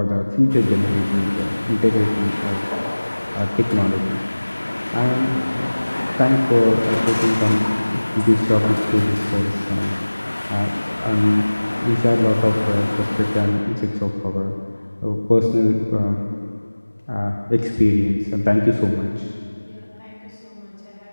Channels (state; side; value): inverted; both; correlation -1.00